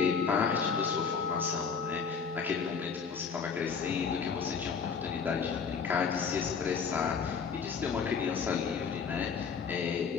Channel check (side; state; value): right; quieter; 5.9 dB